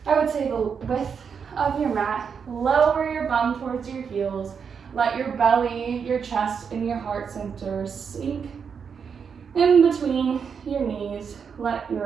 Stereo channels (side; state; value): left; quieter; 6.5 dB